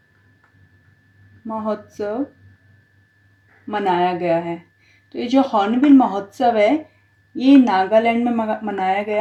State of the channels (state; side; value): identical; both; correlation 1.00